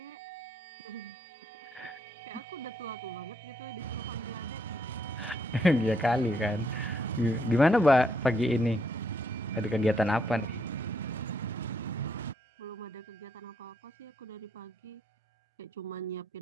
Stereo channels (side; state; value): both; normal; correlation 0.74